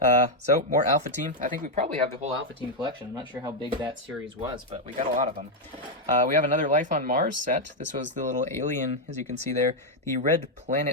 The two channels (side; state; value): both; normal; correlation 0.01